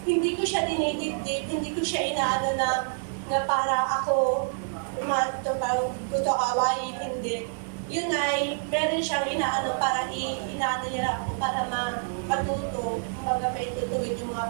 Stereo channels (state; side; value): silent; left; digital silence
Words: Hindi ko siya dinidibdib, hindi ko siya inaano na para ako gusto kawain, hindi. Yun ay, meron siyang inaano para inaano niya ako para matuto, may tutuwid yung